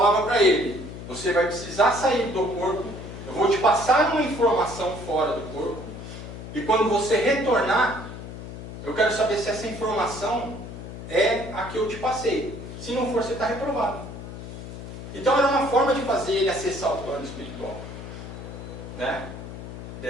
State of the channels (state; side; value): noise; left; hum, 11 dB below the sound